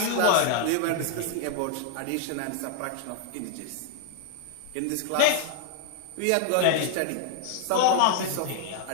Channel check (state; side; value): different; both; correlation 0.00